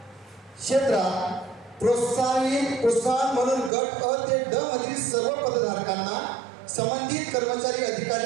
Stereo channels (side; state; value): left; drops out; at 3.7 s